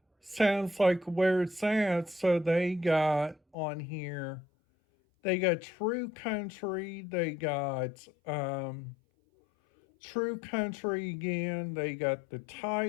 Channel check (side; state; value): right; drops out; at 3.6 s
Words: sounds like where it's at, so they got on here, they got True Country, they got True Country again, they got the